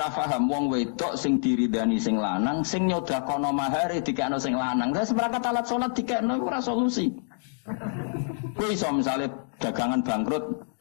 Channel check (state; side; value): silent; right; digital silence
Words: paham wong wedok sing diridani sing lanang sing nyodakono mahare dikekno sing lanang. Terus seperangkat alat salat dikekno iku ora solusi. Kowe iso misale dagangan bangkrut